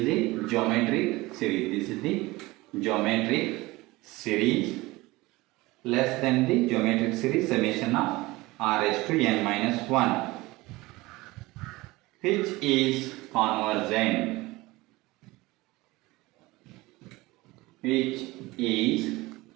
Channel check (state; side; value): quieter; left; 20.8 dB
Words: the geometric series. This is the geometric series less than the geometric series summation of r raised to n minus 1, which is convergent, which is